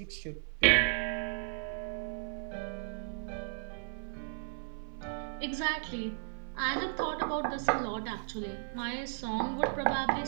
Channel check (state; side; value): silent; left; 55 dB below the other